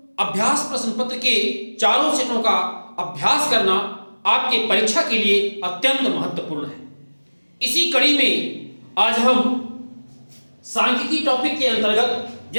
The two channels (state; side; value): inverted; both; correlation -1.00